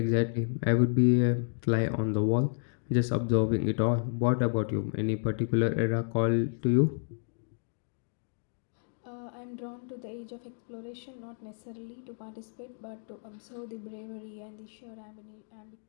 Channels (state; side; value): silent; right; digital silence